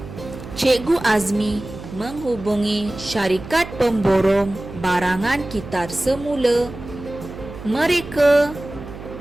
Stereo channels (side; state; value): right; noise; hum, 13 dB below the sound